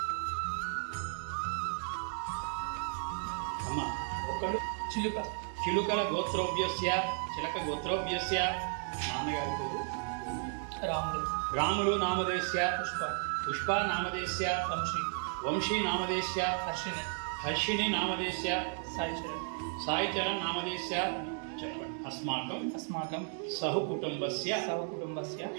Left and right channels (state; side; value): silent; left; 55 dB below the other